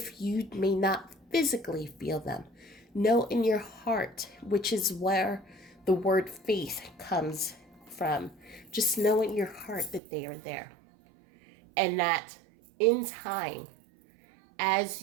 you may not physically feel them, know in your heart, which is where the word faith comes from. Just know in your heart that they are there. And that in time, as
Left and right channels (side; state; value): left; drops out; at 10.0 s